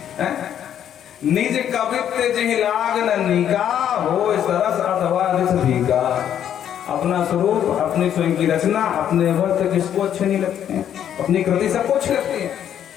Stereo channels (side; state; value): right; quieter; 9.8 dB